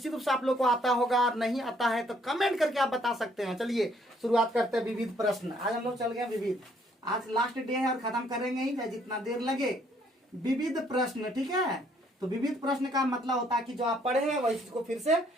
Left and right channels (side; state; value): both; normal; correlation 0.66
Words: रूप से आप लोग को आता होगा। और नहीं आता है तो कमेंट करके आप बता सकते हैं। चलिए शुरुआत करते हैं विविध प्रश्न। आज हम लोग चल गए विविध, आज लास्ट डे है और खत्म करेंगे ही, चाहे जितना देर लगे। विविध प्रश्न, ठीक है। तो विविध प्रश्न का मतलब होता है कि जो आप पढ़े हैं वही चीज को फिर से